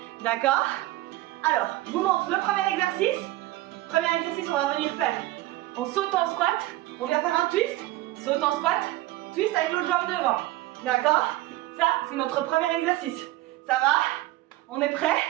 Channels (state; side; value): quieter; left; 17.2 dB